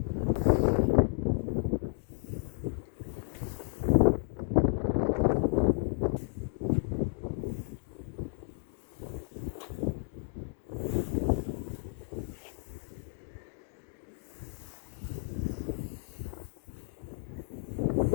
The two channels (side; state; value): right; silent; 56 dB below the other